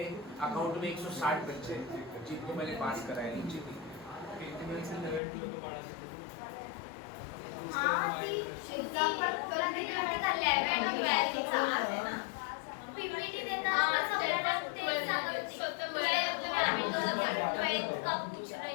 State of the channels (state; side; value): drops out; right; at 5.2 s